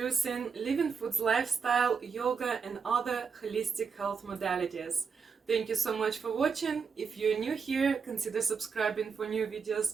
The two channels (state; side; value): quieter; left; 5.7 dB